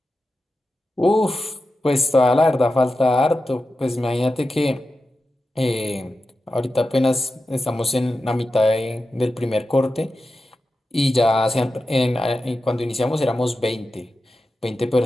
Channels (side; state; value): both; normal; correlation 0.91